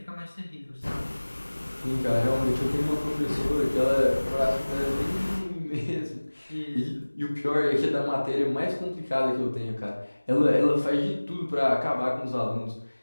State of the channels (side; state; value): both; inverted; correlation -1.00